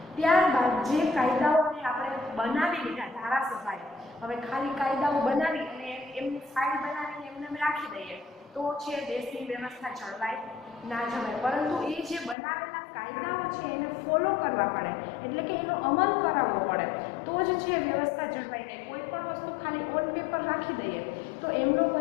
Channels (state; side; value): drops out; right; at 12.4 s